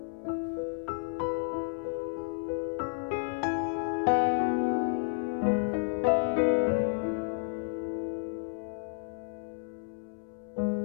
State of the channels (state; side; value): silent; right; 57 dB below the other